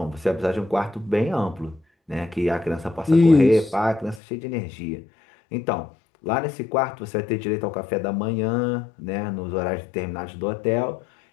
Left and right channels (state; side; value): drops out; right; at 4.2 s